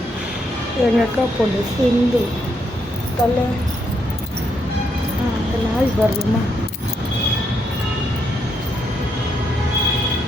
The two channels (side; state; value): both; normal; correlation 0.77